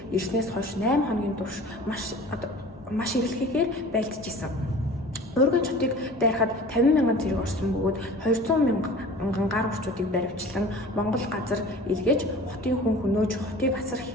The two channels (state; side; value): normal; both; correlation 0.42